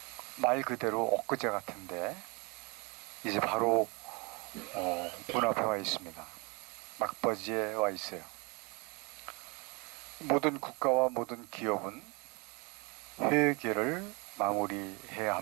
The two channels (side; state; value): left; quieter; 29.4 dB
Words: 말 그대로 엊그제 같은데 이제 바로 문 앞에 와 있습니다. 막바지에 와 있어요. 모든 국가와 모든 기업은 회계를 마무리해야